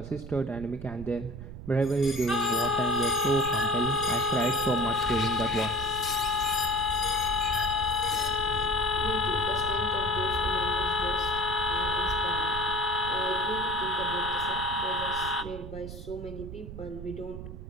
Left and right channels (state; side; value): noise; right; rumble, 11 dB below the sound